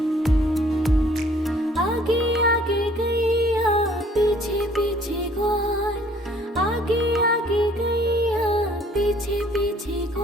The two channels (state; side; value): normal; both; correlation 0.58